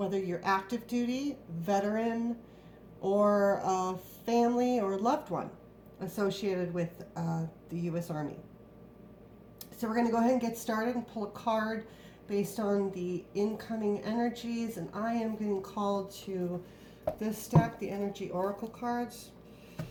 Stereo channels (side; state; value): both; identical; correlation 1.00